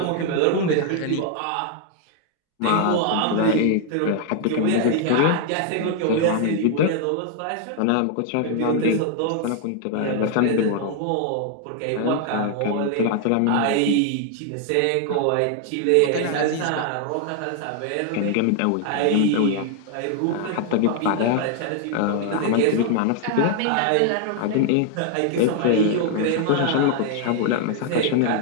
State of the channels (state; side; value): different; both; correlation 0.00